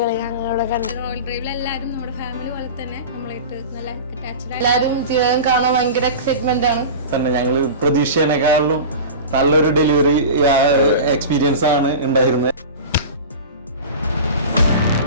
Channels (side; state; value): both; inverted; correlation -0.32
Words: ഞങ്ങളിവിടെ കണ്ടു. റോയൽ ഡ്രൈവിൽ എല്ലാവരും നമ്മുടെ ഫാമിലി പോലെ തന്നെ നമ്മളായിട്ട് നല്ല അറ്റാച്ച്ഡ് ആണ്. എല്ലാവരും ജീവകൻ കാണാൻ ഭയങ്കര എക്സൈറ്റ്മെന്റ് ആണ്. തന്നെ ഞങ്ങൾ പ്രതീക്ഷേനേക്കാളും നല്ലൊരു ഡെലിവറി എക്സ്പീരിയൻസ് ആണ് ഉണ്ടായിരുന്നത്.